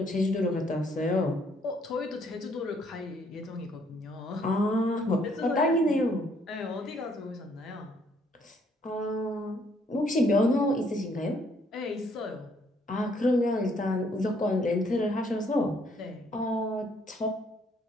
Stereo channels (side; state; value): both; normal; correlation 0.67